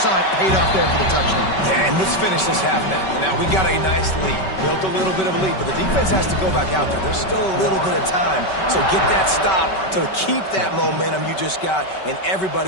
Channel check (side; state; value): right; late; 5.3 ms